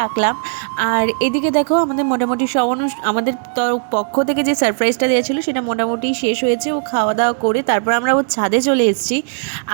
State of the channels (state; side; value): silent; left; digital silence